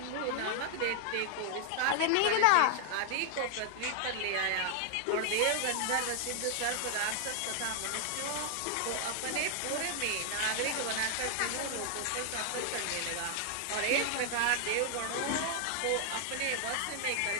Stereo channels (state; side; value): different; both; correlation 0.00